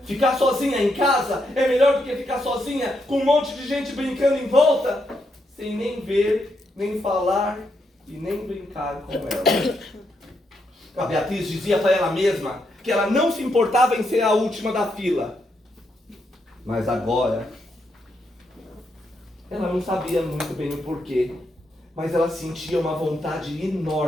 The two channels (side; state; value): both; normal; correlation 0.80